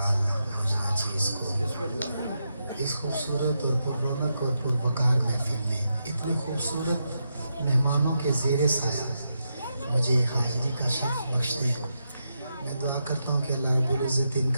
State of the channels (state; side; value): inverted; both; correlation -0.85